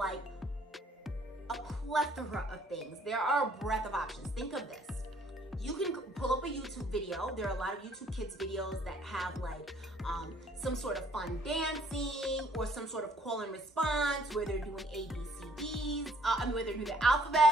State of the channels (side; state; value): both; normal; correlation 0.61